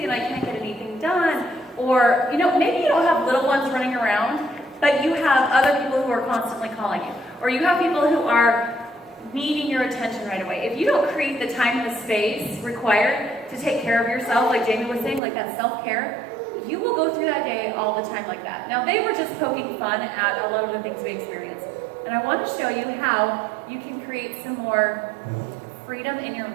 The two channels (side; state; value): left; drops out; at 15.2 s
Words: and I can't get anything done. Or, maybe you don't have little ones running around, but you have other people who are constantly calling you. Or you have people who are needing your attention right away. If you don't create the time and the space required to take care of yourself, like Jamie was saying, like that self-care, you will go through that day all the time like that. Now, they were just poking fun at a lot of the things we experience. And I want to show you how you can create some more freedom in your